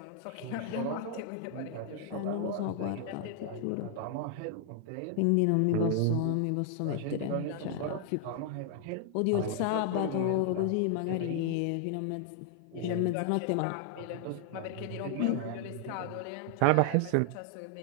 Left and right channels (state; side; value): different; both; correlation 0.00